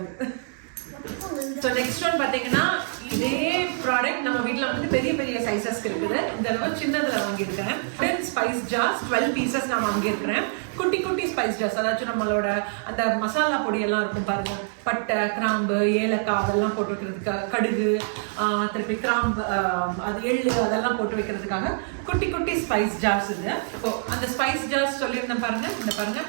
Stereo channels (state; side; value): silent; left; 62 dB below the other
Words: ஸோ நெக்ஸ்ட் ஒன் பார்த்தீங்கன்னா இதே ப்ராடக்ட் நம்ம வீட்டில் வந்து பெரிய பெரிய சைஸஸ்க்கு இருக்குது. இந்த அளவு சின்னதில் வாங்கியிருக்கிறேன். 10 ஸ்பைஸ் ஜார்ஸ் 12 பீசஸ் நான் வாங்கியிருக்கிறேன். குட்டி குட்டி ஸ்பைஸ் ஜார்ஸ், அதாச்சும் நம்மளோட அந்த மசாலா பொடியெல்லாம் இருக்கும் பாருங்க, பட்டை, கிராம்பு, ஏலக்காய் அதெல்லாம் போட்டு வைக்கிறதுக்கு, கடுகு, திருப்பி கிராம்பு, அது எள்ளு அதெல்லாம் போட்டு வைக்கிறதுக்காக குட்டி குட்டி ஸ்பைஸ் ஜார்ஸ் இது. ஸோ அந்த ஸ்பைஸ் ஜார்ஸ் சொல்லியிருந்தேன் பாருங்க, இந்த பாருங்க